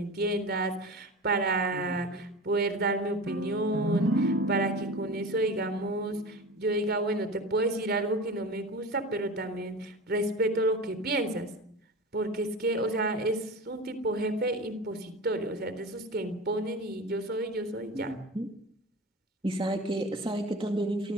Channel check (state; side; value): normal; both; correlation 0.31